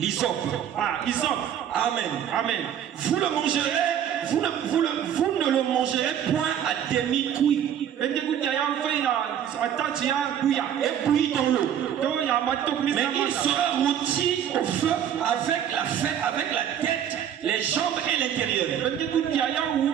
Amen. Amen. Vous le mangerez, vous ne le mangerez point à demi-cuit. Et bouilli dans l'eau. Mais il sera rôti au feu avec la tête, les jambes et l'intérieur.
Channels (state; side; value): quieter; left; 9.5 dB